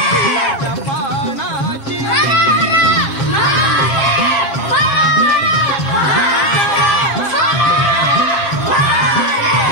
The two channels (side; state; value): right; late; 7.4 ms